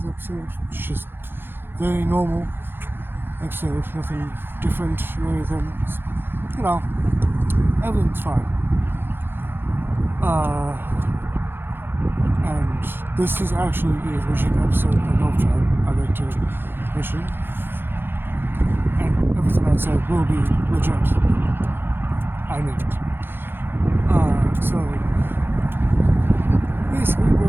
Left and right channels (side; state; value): left; late; 0.10 ms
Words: episode. It's just very normal episode, nothing different or anything. Everything's fine. And this is actually a legit episode of Elfshark, I'd like to mention. And everything I said will be legit. I mean it. So basically,